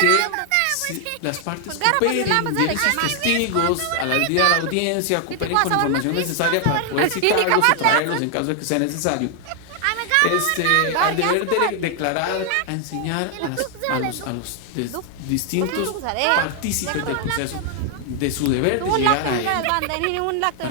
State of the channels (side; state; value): both; different; correlation 0.00